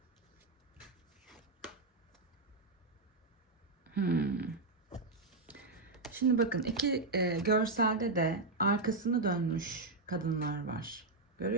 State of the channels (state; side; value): quieter; left; 3.3 dB